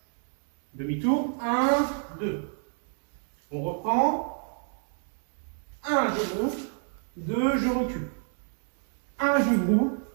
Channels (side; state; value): left; silent; 55 dB below the other